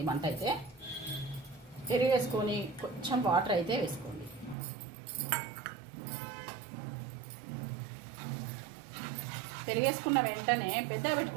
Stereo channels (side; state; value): left; drops out; at 4.5 s